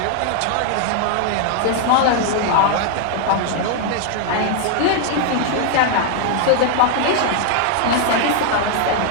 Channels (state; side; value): different; both; correlation 0.00